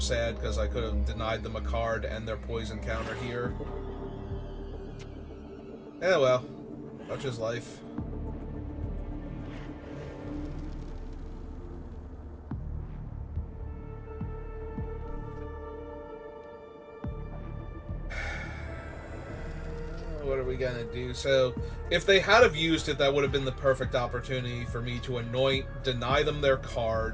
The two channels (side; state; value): both; identical; correlation 1.00